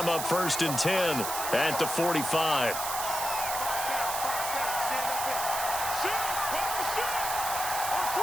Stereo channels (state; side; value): noise; right; hiss, 4 dB below the sound